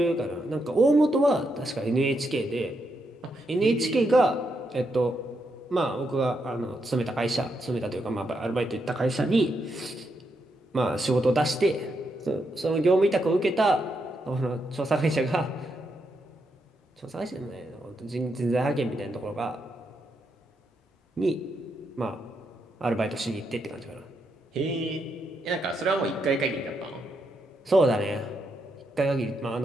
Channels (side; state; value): both; normal; correlation 0.81